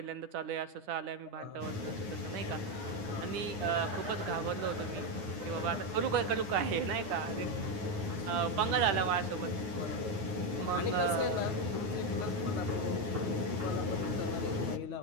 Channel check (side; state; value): left; late; 9.4 ms